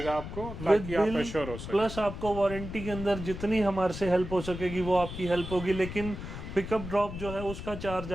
आपको, विद ताकि आप बिल, एश्योर हो सके। प्लस आपको वारंटी के अंदर जितनी हमारे से हेल्प हो सकेगी वो आपकी हेल्प होगी, लेकिन पिकअप ड्रॉप जो है उसका चार्ज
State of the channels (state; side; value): noise; left; rumble, 9 dB below the sound